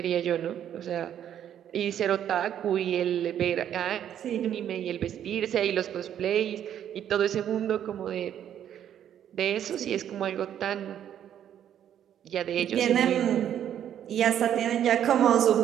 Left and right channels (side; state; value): left; quieter; 10.1 dB